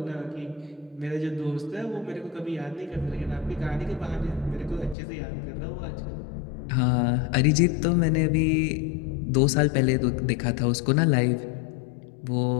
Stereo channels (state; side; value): drops out; right; at 5.0 s